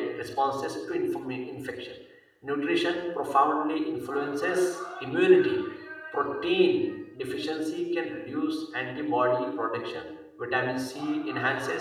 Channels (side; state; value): both; identical; correlation 1.00